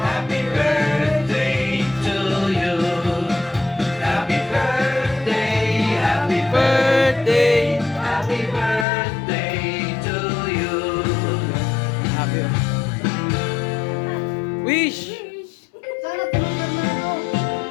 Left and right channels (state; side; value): drops out; right; at 8.8 s